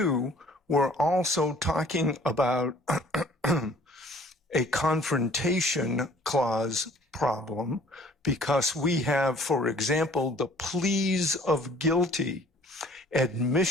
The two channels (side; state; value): both; normal; correlation 0.54